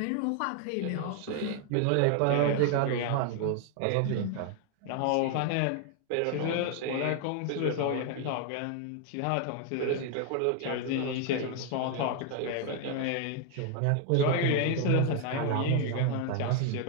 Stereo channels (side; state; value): both; different; correlation 0.00